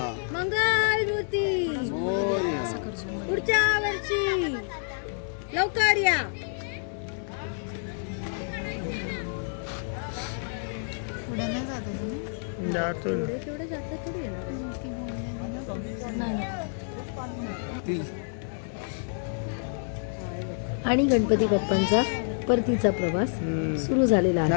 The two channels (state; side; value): silent; right; digital silence